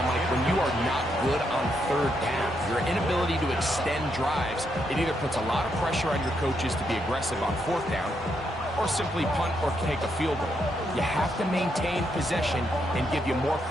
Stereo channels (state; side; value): normal; both; correlation 0.79